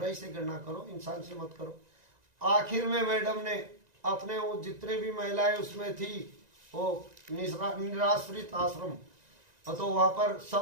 से घृणा करो, इंसान से मत करो। आखिर में मैडम ने अपने वो जितने भी महिलाएं उसमें थी, वो निराश्रित आश्रम, तो वहां पर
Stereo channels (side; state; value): left; late; 1.9 ms